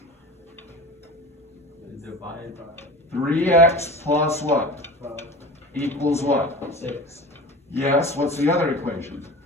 Divide by 3x plus what? Equals what? 6. Yes, what's the other equation?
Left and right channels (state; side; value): normal; both; correlation 0.35